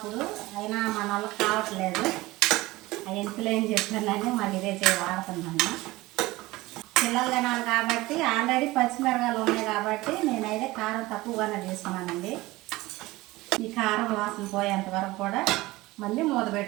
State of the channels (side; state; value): left; quieter; 19.6 dB